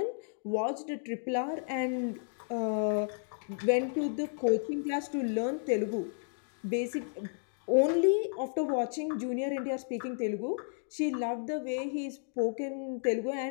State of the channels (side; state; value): right; silent; digital silence